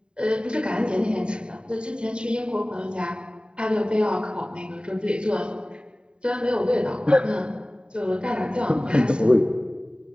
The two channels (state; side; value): late; left; 0.050 ms